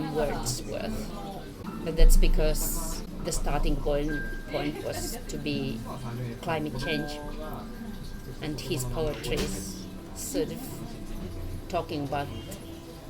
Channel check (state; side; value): identical; both; correlation 1.00